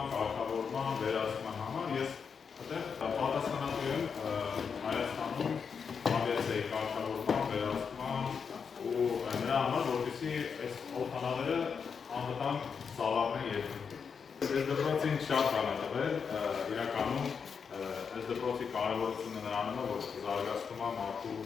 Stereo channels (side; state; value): right; quieter; 6.2 dB